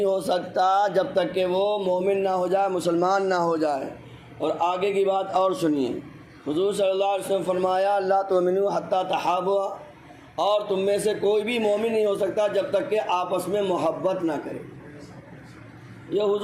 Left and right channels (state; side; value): identical; both; correlation 1.00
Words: ہو سکتا جب تک کہ وہ مومن نہ ہو جائے، مسلمان نہ ہو جائے۔ اور آگے کی بات اور سنیے، حضور صلی اللہ علیہ وسلم فرمایا لا تؤمنوا حتی تحابوا، اور تم میں سے کوئی بھی مومن نہیں ہو سکتا جب تک کہ آپس میں محبت نہ کرے۔ یہ